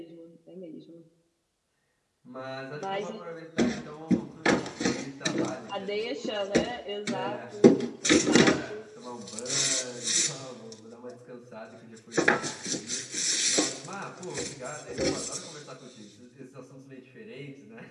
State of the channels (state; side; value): identical; both; correlation 1.00